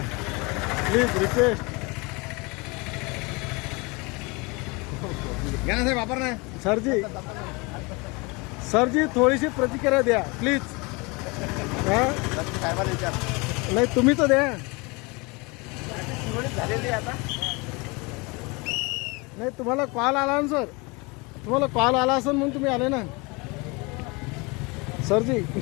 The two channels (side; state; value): right; quieter; 27.4 dB